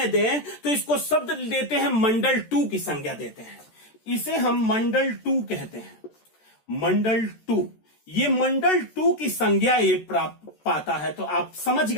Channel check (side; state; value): right; late; 13 ms